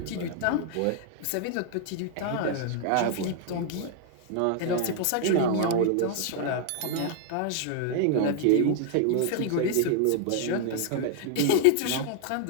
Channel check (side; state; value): both; different; correlation 0.00